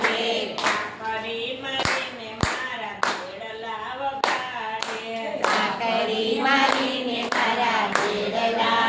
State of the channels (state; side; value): identical; both; correlation 1.00